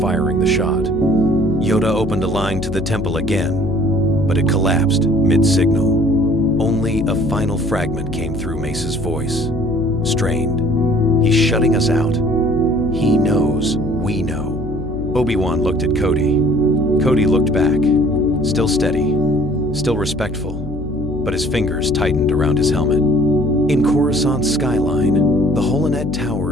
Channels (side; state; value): left; noise; hum, 9 dB below the sound